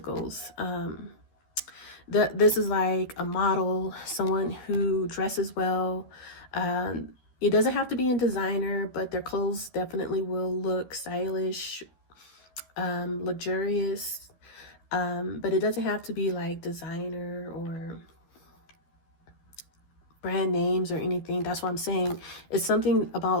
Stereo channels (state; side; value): late; right; 12 ms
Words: This is like a model, someone who dresses well. It doesn't have to be in designer, but their clothes definitely will look stylish, luxurious. But it doesn't have to be like designer or brand names or anything. That's what I'm saying. It's something